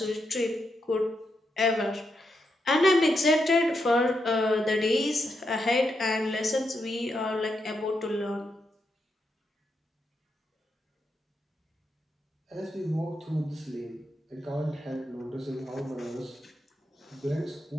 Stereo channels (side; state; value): both; normal; correlation 0.83